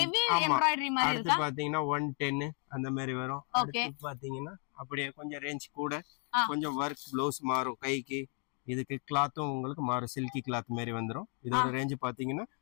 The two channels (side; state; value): right; quieter; 39.9 dB